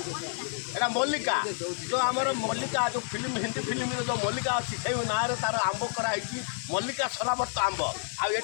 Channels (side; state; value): right; silent; 58 dB below the other